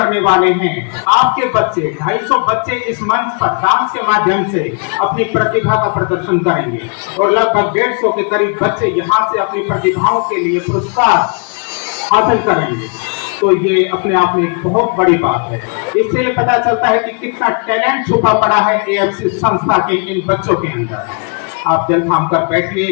वाले हैं। आपके बच्चे 250 बच्चे इस मंच पर डांस के माध्यम से अपनी प्रतिभा का प्रदर्शन करेंगे और लगभग 150 के करीब बच्चे यहाँ से अपनी प्रतिभाओं के लिए पुरस्कार हासिल करेंगे। तो ये अपने आप में एक बहुत बड़ी बात है। इससे पता चलता है कि कितना टैलेंट छुपा पड़ा है एएफसी संस्था के इन बच्चों के अंदर। आप दिल थाम कर बैठिए,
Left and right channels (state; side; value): quieter; right; 37.8 dB